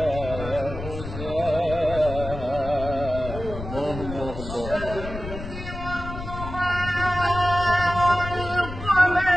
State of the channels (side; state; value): left; noise; rumble, 9 dB below the sound